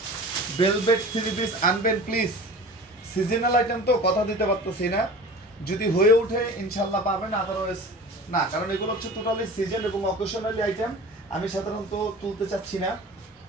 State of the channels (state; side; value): normal; both; correlation 0.39